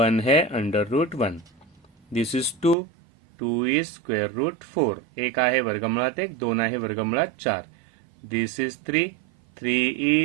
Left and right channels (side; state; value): left; drops out; at 2.8 s